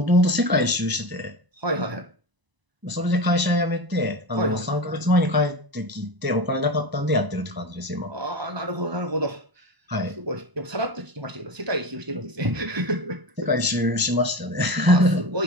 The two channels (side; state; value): left; late; 1.0 ms